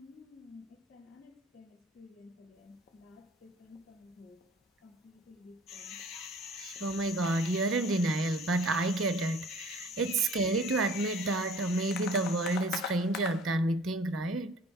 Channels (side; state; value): both; normal; correlation 0.50